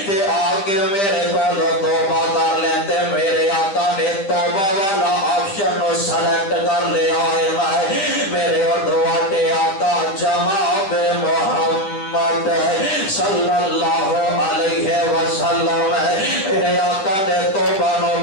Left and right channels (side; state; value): right; late; 10 ms